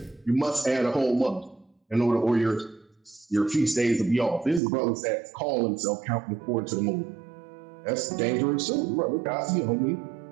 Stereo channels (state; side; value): drops out; left; at 4.6 s